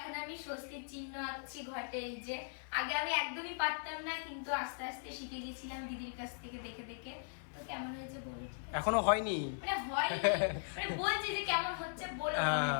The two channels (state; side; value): silent; right; 52 dB below the other